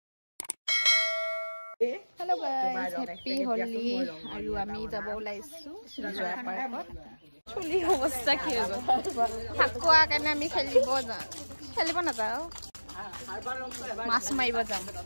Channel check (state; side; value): inverted; both; correlation -1.00